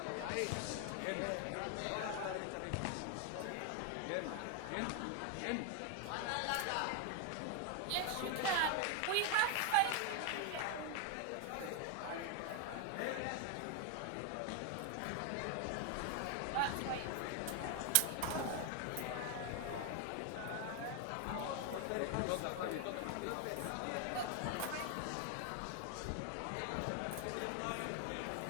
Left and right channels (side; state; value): both; different; correlation 0.00